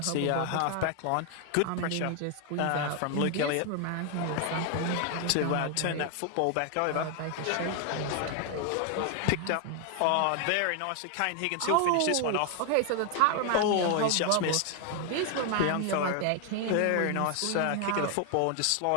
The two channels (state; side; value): different; both; correlation 0.00